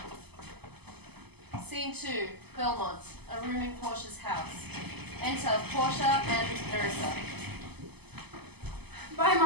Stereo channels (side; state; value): left; late; 0.98 ms